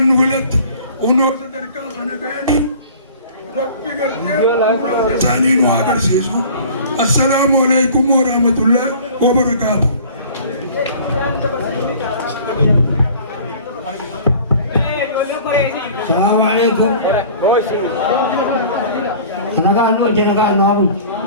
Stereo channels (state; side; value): inverted; both; correlation -0.46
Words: نقولت ونور تركا خنا بيني ربي قلتين ثاني نواقول سيسو السلام عليكم ورحمة الله وبركاته. السلام عليكم. أنا قاعد نوجه أنا قاعد نقول.